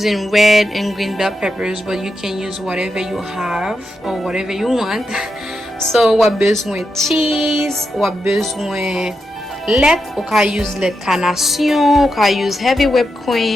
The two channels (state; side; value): normal; both; correlation 0.86